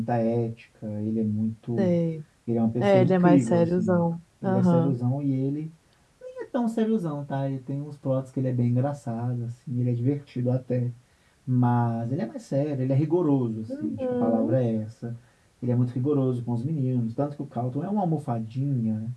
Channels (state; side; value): identical; both; correlation 1.00